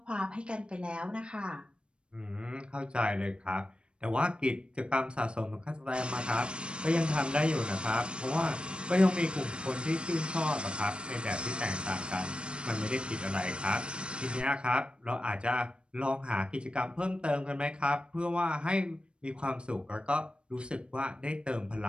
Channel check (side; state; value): left; late; 0.055 ms